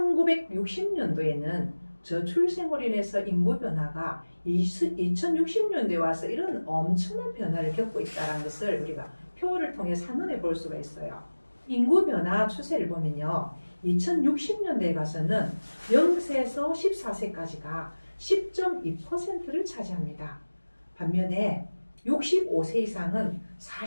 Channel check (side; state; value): both; inverted; correlation -1.00